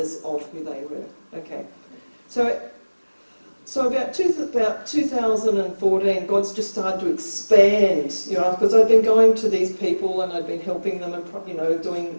of who they were. Okay, so about 2014, God's just started to expand, because I'd been going to these people and I'd been helping them and doing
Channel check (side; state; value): both; inverted; correlation -1.00